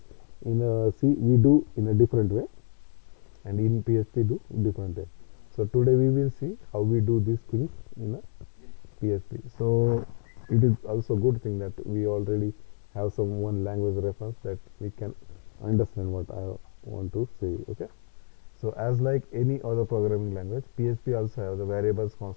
in a C we do in a different way, and in PHP do different way. So today we will see how we do these things in a PHP. So it is also good thing that we already have some one language reference that we can understand what I want to say. Okay. So as like any other programming language, PHP also have the variables,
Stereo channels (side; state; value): right; silent; digital silence